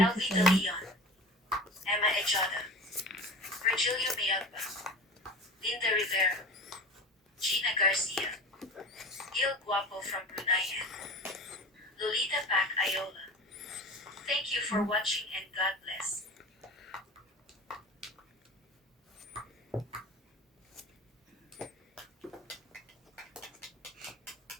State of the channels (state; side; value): normal; both; correlation 0.35